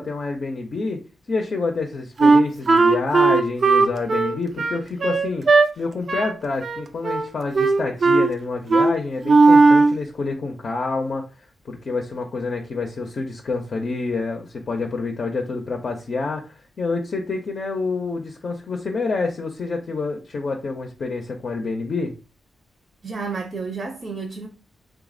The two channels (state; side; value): normal; both; correlation 0.88